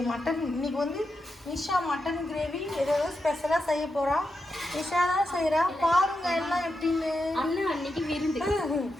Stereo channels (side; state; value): both; normal; correlation 0.87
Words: மட்டன் இன்னைக்கு வந்து நிஷா மட்டன் கிரேவி ஏதாவது ஸ்பெஷலாக செய்ய போகிறா. நிஷா தான் செய்கிறா. பாருங்க எல்லாம் எப்படின்னு. அண்ணா அன்னைக்கு விருந்து,